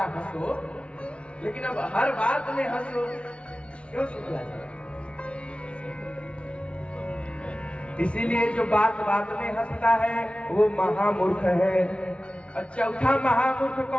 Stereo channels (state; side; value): late; right; 0.060 ms